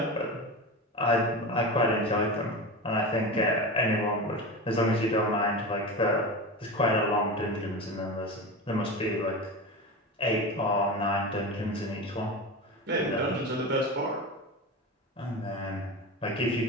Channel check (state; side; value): normal; both; correlation 0.25